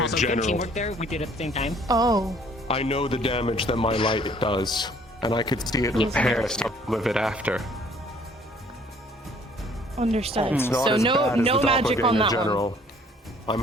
Also, good general. teamwork there. We did it at the same time. Oh. I know the damage that my light does, and I could see it repair some of it after. Understood. It's not So as no bad as no the magic on doppelganger that general.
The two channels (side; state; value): both; normal; correlation 0.58